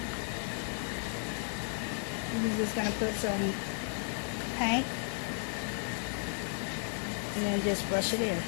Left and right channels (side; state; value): right; silent; 55 dB below the other